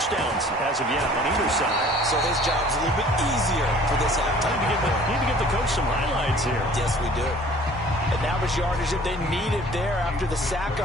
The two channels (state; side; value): normal; both; correlation 0.51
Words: as of yet on either side. So his job's a little bit easier for this halftime. Need to get the coach some highlights here. Yes, we do. And that was yardage that they needed there after the sack